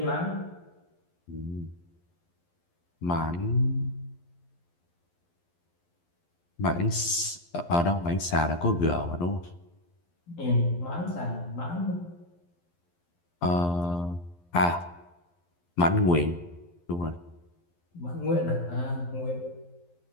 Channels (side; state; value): right; late; 11 ms